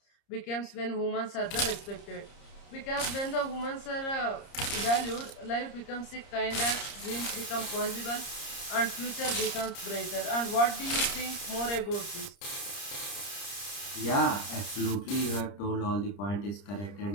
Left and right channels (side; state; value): right; late; 30 ms